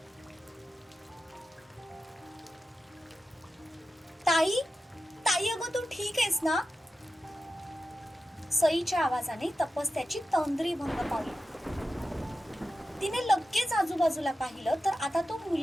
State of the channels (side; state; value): both; normal; correlation 0.91